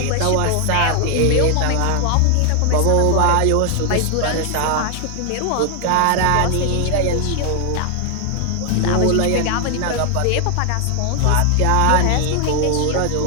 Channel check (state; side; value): different; both; correlation 0.00